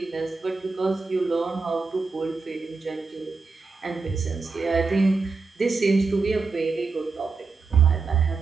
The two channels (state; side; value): quieter; left; 4.3 dB